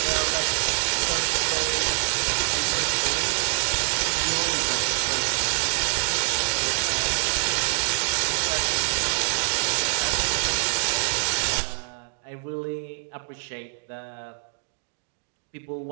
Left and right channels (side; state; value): left; silent; digital silence